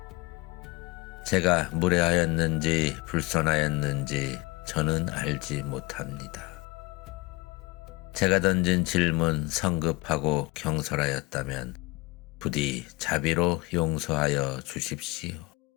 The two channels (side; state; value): right; quieter; 21.5 dB